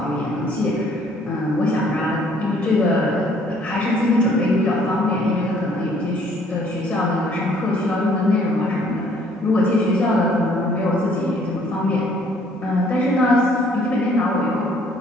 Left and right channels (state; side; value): normal; both; correlation 0.61